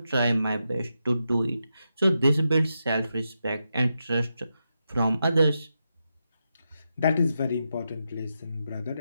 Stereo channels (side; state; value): both; inverted; correlation -0.86